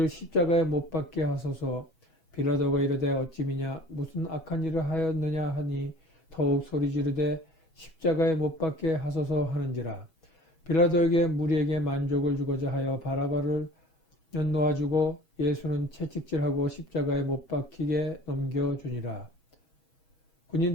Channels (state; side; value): late; right; 6.2 ms